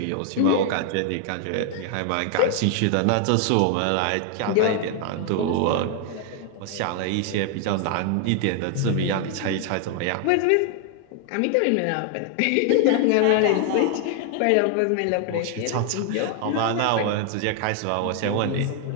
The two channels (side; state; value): both; different; correlation 0.00